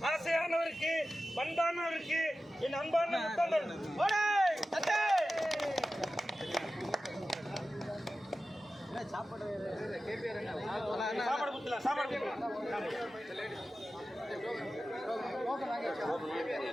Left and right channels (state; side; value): normal; both; correlation 0.94